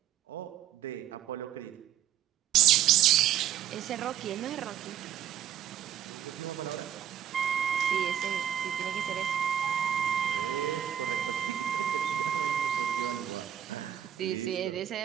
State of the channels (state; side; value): quieter; left; 10.2 dB